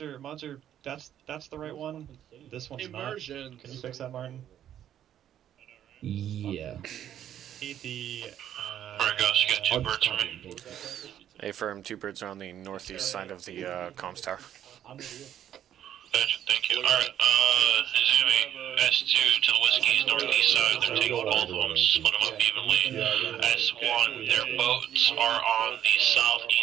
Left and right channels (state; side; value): quieter; left; 10.6 dB